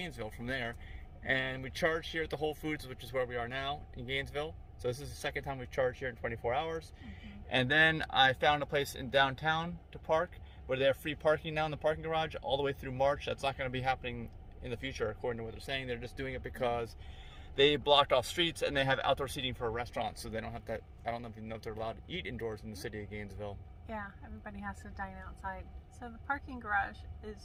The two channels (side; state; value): both; identical; correlation 1.00